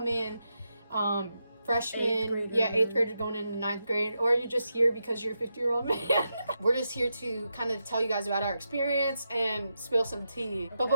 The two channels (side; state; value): both; inverted; correlation -0.86